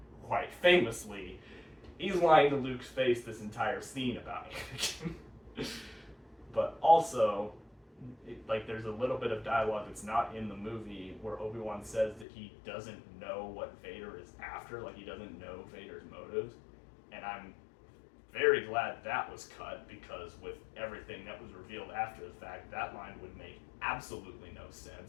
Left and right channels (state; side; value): drops out; right; at 12.2 s